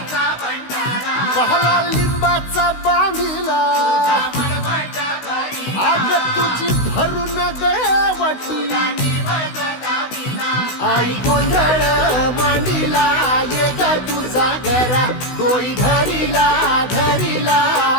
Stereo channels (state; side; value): late; right; 16 ms